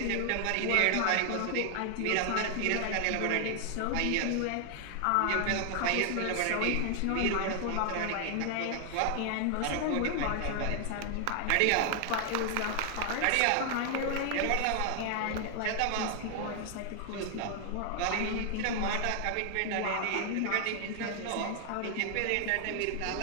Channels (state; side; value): different; both; correlation 0.00